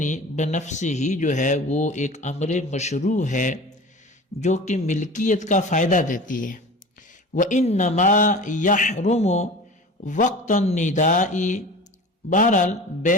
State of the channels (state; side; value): normal; both; correlation 0.37